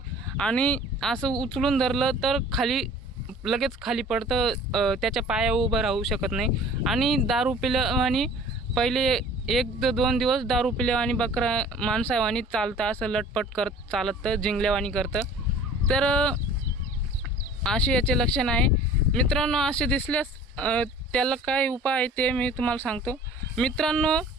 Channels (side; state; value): both; normal; correlation 0.47